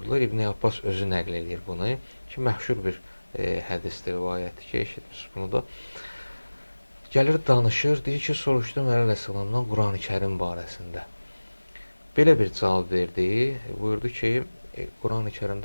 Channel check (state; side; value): inverted; both; correlation -1.00